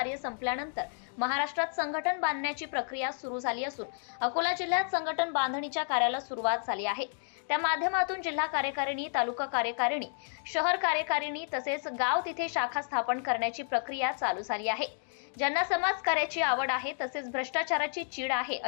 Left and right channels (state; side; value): silent; right; digital silence